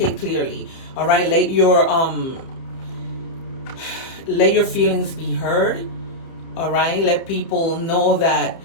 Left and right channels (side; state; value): right; late; 30 ms